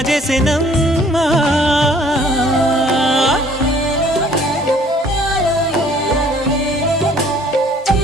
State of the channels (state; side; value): normal; both; correlation 0.57